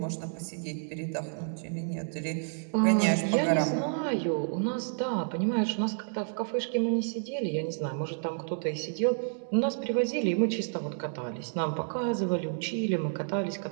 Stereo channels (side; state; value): left; silent; digital silence